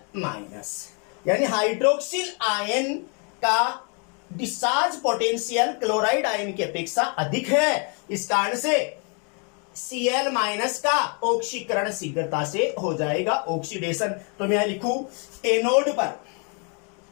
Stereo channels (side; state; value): right; quieter; 36.7 dB